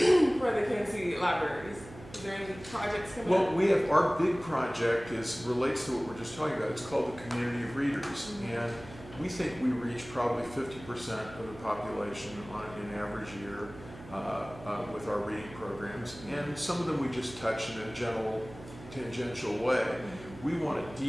the Kansas City libraries? Is there any projects coming up? Well, we have our big project relates to what we're just talking about. It's called the Community of Readers, and we think we reach probably 50% of the population on an average year with our reading programs, and some of them we just touch in a general, tangential way. We want to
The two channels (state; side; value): noise; right; hum, 16 dB below the sound